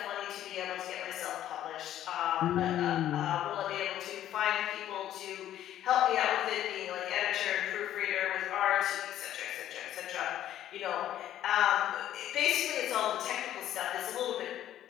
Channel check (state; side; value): quieter; right; 12.0 dB